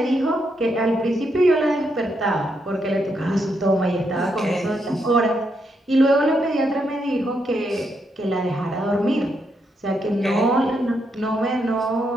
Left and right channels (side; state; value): both; normal; correlation 0.79